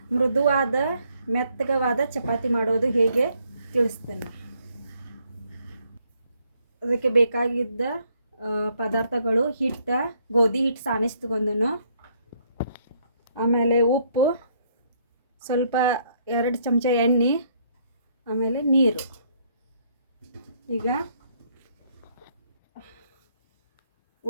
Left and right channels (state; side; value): inverted; both; correlation -0.69